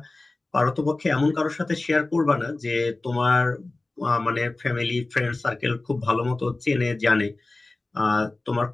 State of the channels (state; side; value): quieter; right; 3.1 dB